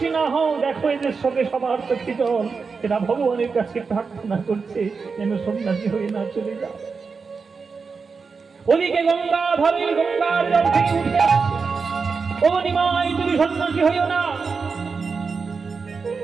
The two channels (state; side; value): quieter; left; 5.0 dB